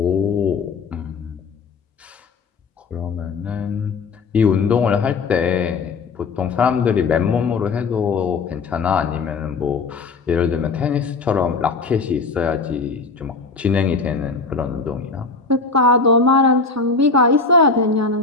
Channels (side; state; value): right; quieter; 4.4 dB